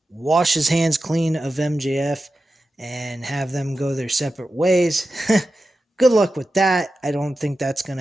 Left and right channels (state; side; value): normal; both; correlation 0.92